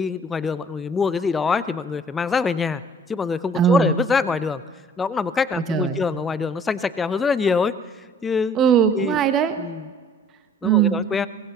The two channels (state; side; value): normal; both; correlation 0.55